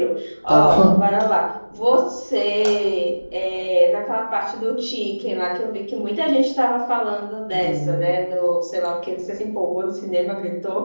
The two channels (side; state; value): both; inverted; correlation -1.00